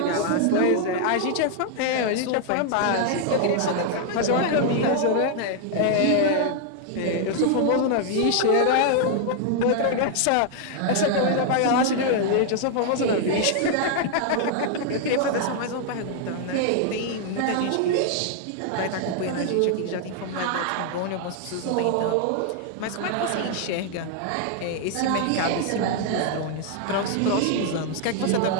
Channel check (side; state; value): both; different; correlation 0.00